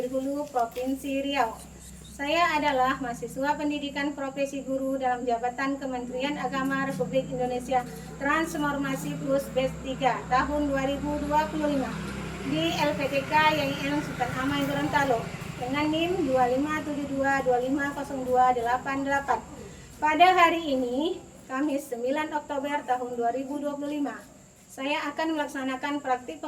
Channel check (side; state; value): both; identical; correlation 1.00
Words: Hulu, Provinsi Riau. Saya adalah mahasiswa pendidikan profesi guru dalam jabatan Kementerian Agama Republik Indonesia Transformasi Plus Batch 3 tahun 2025 di LPTK YN Sultan Amai Gorontalo dengan NIM 2572250288. Pada hari ini, Kamis 9 Oktober tahun 2025, saya akan melaksanakan praktik